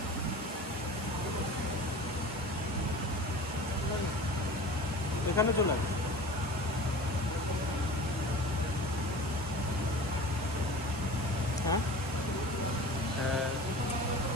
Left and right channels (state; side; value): normal; both; correlation 0.37